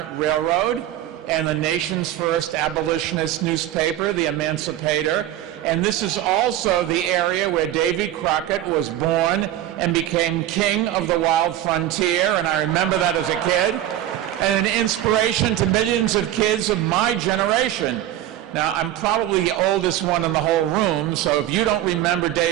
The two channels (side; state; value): left; quieter; 12.7 dB